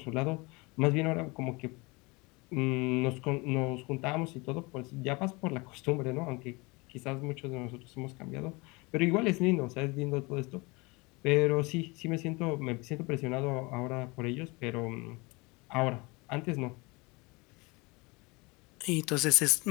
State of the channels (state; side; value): quieter; right; 26.2 dB